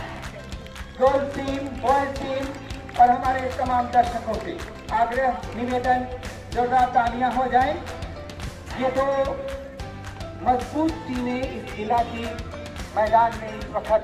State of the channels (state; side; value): identical; both; correlation 1.00